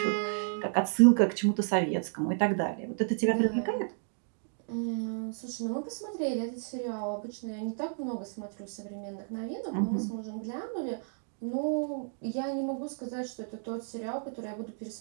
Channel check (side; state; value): left; silent; digital silence